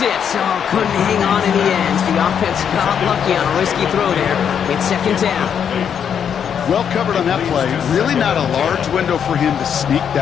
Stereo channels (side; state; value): right; quieter; 8.0 dB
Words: it. Oh, couldn't hang on in the end. The offense got lucky on a risky throw there. It's second down. Well covered on that play. Really not a large window for him to sneak